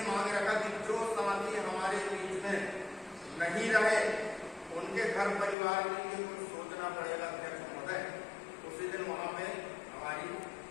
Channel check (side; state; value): right; drops out; at 5.6 s